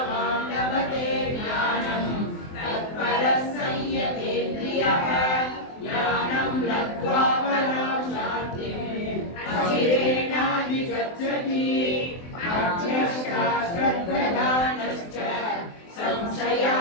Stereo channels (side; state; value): right; late; 23 ms